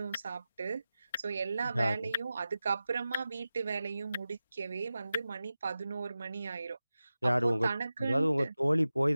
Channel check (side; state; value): both; inverted; correlation -0.94